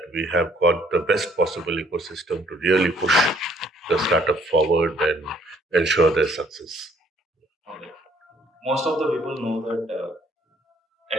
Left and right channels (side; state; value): both; normal; correlation 0.62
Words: we have got the best possible ecosystem to really push the startup forward and ensure their success. Okay. Most of the people know that